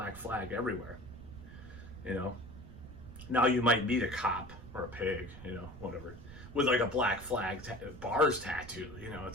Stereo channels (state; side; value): noise; right; rumble, 15 dB below the sound